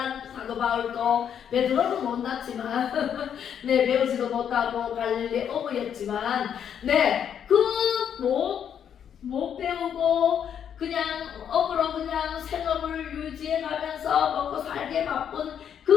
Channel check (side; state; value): right; quieter; 8.6 dB